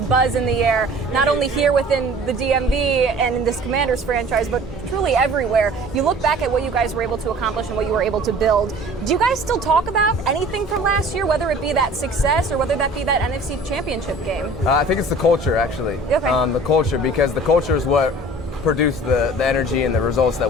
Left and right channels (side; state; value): both; normal; correlation 0.46